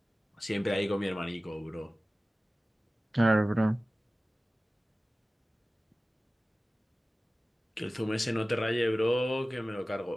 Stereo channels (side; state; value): both; normal; correlation 0.97